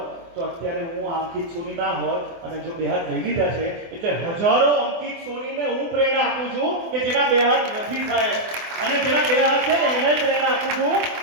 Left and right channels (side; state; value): left; late; 24 ms